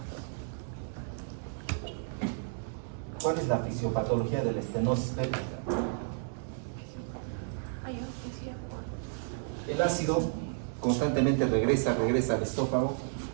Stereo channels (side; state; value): left; silent; 56 dB below the other